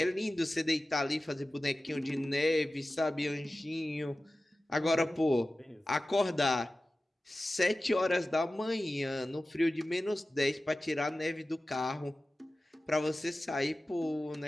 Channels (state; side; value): normal; both; correlation 0.96